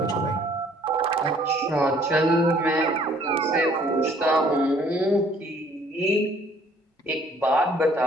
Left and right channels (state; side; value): normal; both; correlation 0.59